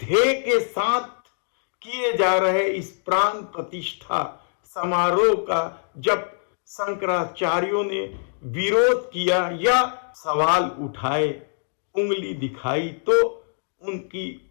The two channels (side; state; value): right; silent; digital silence